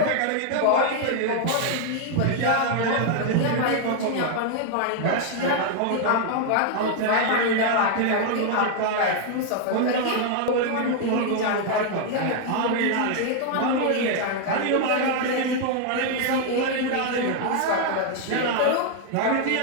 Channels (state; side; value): different; both; correlation 0.00